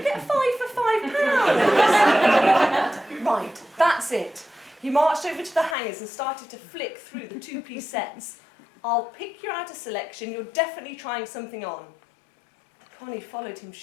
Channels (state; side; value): drops out; right; at 5.8 s